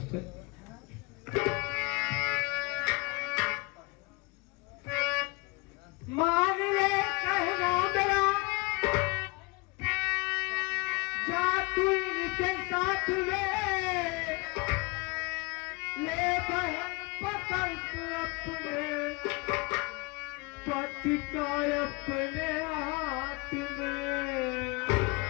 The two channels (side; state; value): right; quieter; 26.2 dB